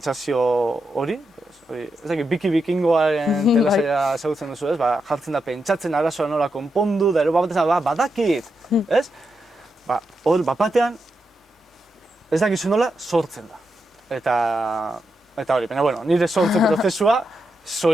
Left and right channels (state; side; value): normal; both; correlation 0.85